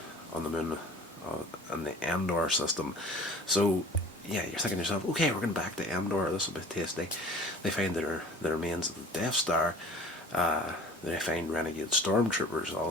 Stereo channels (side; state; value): both; normal; correlation 0.46